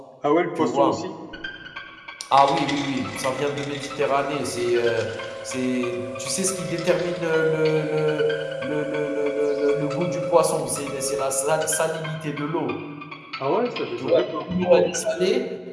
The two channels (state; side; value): identical; both; correlation 1.00